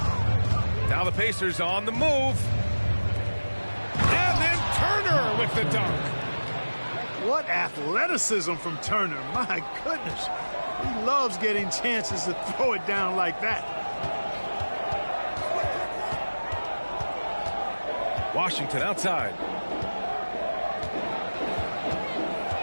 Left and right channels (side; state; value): both; inverted; correlation -1.00